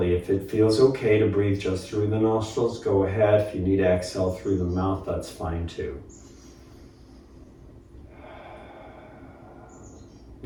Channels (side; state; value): both; identical; correlation 1.00